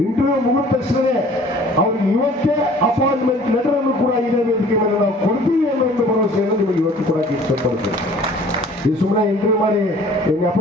ಇಂಟರ್ವ್ಯೂ ಮುಗಿದ ತಕ್ಷಣವೇ ಅವ್ರಿಗೆ ಇವತ್ತೇ ಅಪಾಯಿಂಟ್ಮೆಂಟ್ ಲೆಟರ್ ಅನ್ನು ಕೂಡ ಇದೇ ವೇದಿಕೆ ಮೇಲೆ ನಾವು ಕೊಡ್ತೀವಿ ಅನ್ನೋ ಒಂದು ಭರವಸೆಯನ್ನು ನಿಮಗೆ ಇವತ್ತು ಕೂಡ ಇಷ್ಟಪಡ್ತೇವೆ. ಇದು ಸುಮ್ಮನೆ ಇಂಟರ್ವ್ಯೂ ಮಾಡಿ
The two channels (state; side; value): normal; both; correlation 0.51